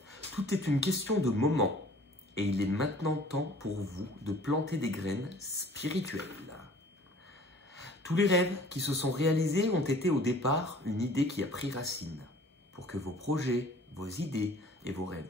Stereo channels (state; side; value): normal; both; correlation 0.50